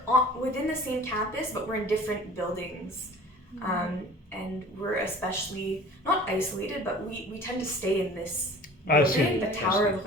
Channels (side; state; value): both; normal; correlation 0.44